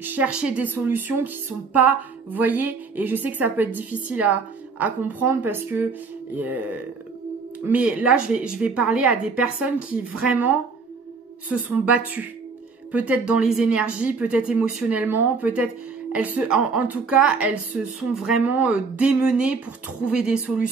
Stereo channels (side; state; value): left; quieter; 4.7 dB